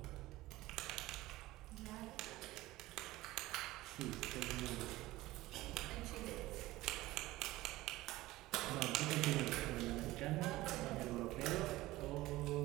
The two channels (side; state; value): left; quieter; 17.9 dB